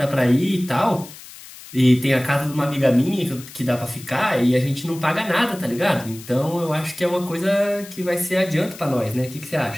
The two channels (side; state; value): left; noise; hiss, 17 dB below the sound